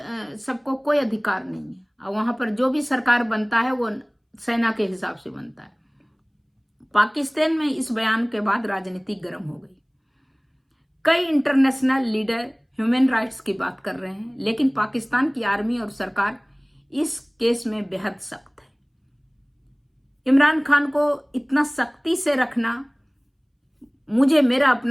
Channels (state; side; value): identical; both; correlation 1.00